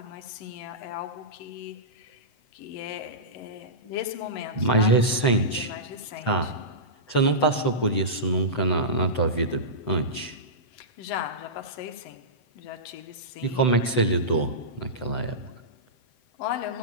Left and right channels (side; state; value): right; late; 7.8 ms